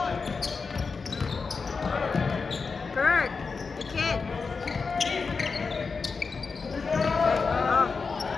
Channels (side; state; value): right; quieter; 4.8 dB